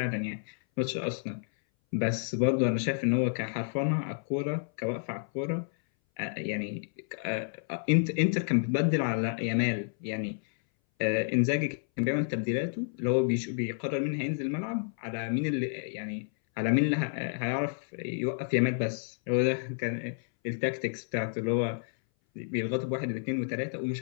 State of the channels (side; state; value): right; silent; 58 dB below the other